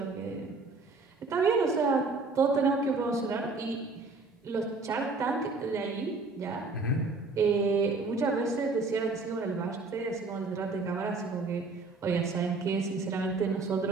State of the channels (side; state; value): left; quieter; 3.8 dB